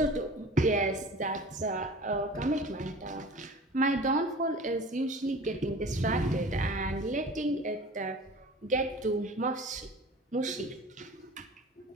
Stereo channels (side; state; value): both; normal; correlation 0.41